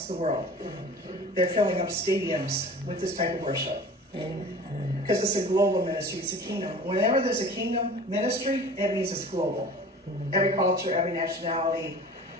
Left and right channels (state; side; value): normal; both; correlation 0.41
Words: the world. They're filling up stadiums with this type of worship. Because it's a global ministry, it's a kingdom. Whenever there's a kingdom ministry, it means it's global. Every culture, every nationality,